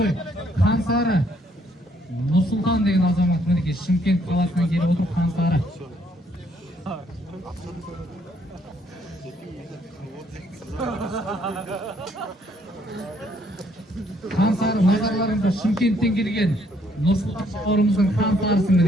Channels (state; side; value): normal; both; correlation 0.68